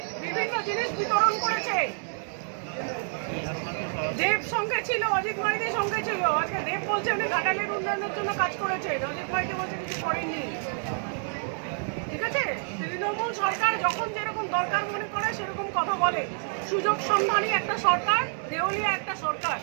বিভিন্ন জিনিস বিতরণ করেছে। দেব সঙ্গে ছিল, অজিত মাইতির সঙ্গে ছিল। আজকে দেব বলছে উনি ঘাটালের উন্নয়নের জন্য কাজ করেছে, অজিত মাইতি বলছে কিছু করেননি। ঠিক আছে? তৃণমূল সরকার যখন যেরকম দরকার মনে করে সেরকম কথা বলে। সুযোগ সন্ধানী একটা সরকার, দেউলিয়া একটা সরকার।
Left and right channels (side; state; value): left; silent; 56 dB below the other